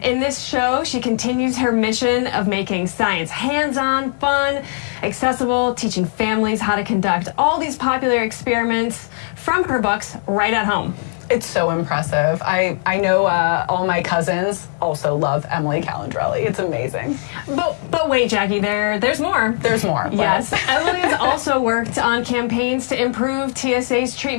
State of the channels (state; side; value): silent; right; digital silence